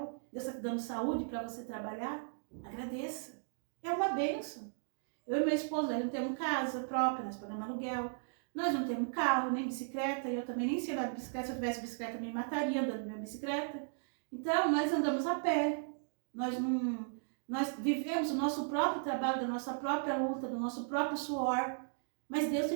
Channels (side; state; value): left; silent; digital silence